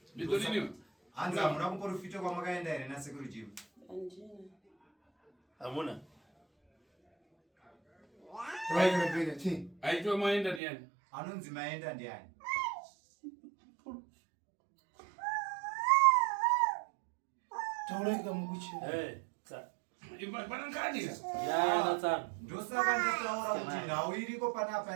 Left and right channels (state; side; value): drops out; left; at 10.6 s